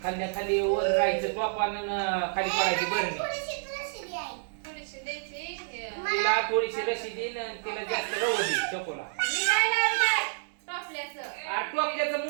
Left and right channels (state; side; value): silent; left; 58 dB below the other